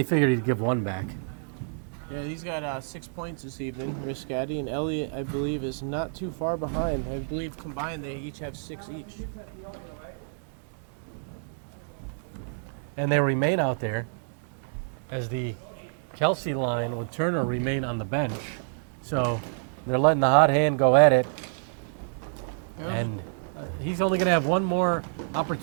figured he'd give one back. Yeah, he's got 6 points this evening, Riscotti, and Elliott, I believe, is not too far behind. I believe combined they each have 6 each. And they remain out there as the Kelsey line with Turner remain on the bench. So they're letting the hot hand go at it. And he's only going to have one more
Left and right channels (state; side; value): silent; left; digital silence